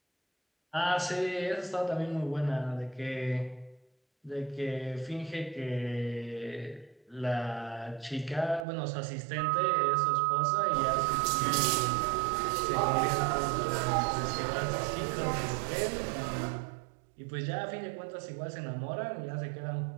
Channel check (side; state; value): left; drops out; at 8.7 s